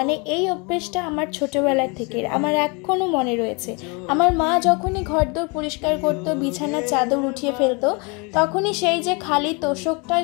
এই অভ্যেসটা আমার ছোটোবেলার থেকে আমার এখনও মনে রয়েছে। আমার মা যখনই ঘরদোর পরিষ্কার করতো, বিছানার চাদর উঠিয়ে ফেলতো, তখনই সেই যে খালি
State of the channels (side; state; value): right; quieter; 30.9 dB